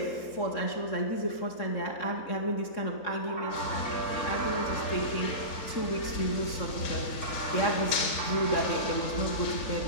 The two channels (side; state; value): right; late; 3.7 ms